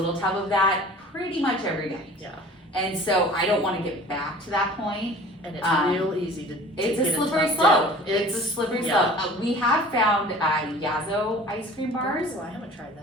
tub of that pretty much every day. yeah, And so I don't want to get back to that point. and it's real easy to It's get a in slippery tough slope. down. It's a slippery yeah. slope. We have found Yazo ice cream bars. Oh, I haven't tried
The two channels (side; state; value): both; normal; correlation 0.45